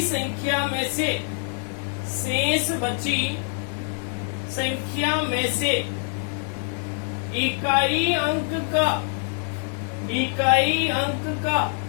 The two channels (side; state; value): right; silent; 56 dB below the other